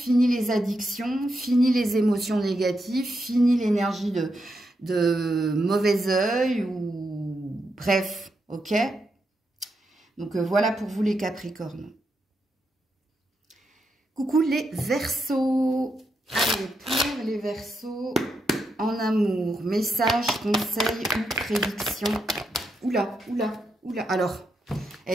les addictions, fini les émotions négatives, fini l'énergie de mauvais œil ou bref, ok? Donc voilà pour vous les Capricornes. Coucou les Verseaux. Allez, pour les Verseaux en amour, message, conseil ou prédiction. Oula, oula, oula. Alors...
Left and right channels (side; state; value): both; normal; correlation 0.83